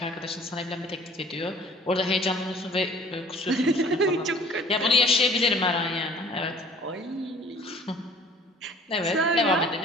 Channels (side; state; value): both; normal; correlation 0.51